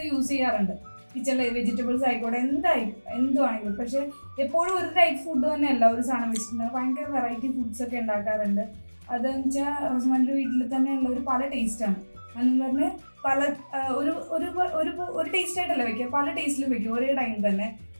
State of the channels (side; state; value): both; inverted; correlation -1.00